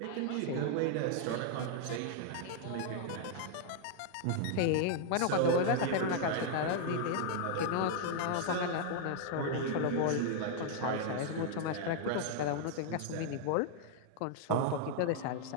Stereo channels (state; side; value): different; both; correlation -0.01